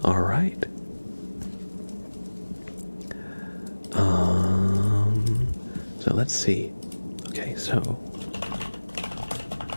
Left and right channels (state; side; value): inverted; both; correlation -1.00